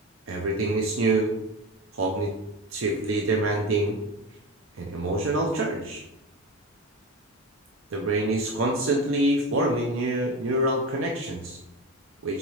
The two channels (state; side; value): normal; both; correlation 0.25